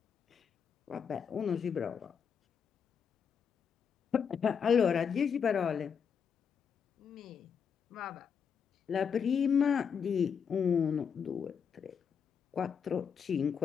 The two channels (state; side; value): quieter; right; 6.9 dB